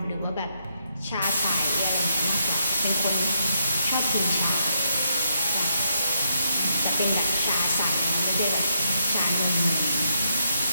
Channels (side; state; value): both; inverted; correlation -0.77